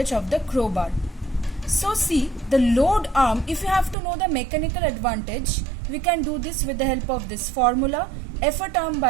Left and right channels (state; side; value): drops out; left; at 4.0 s